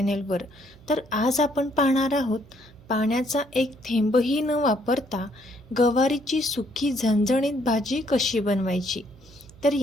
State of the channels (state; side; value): noise; right; hum, 24 dB below the sound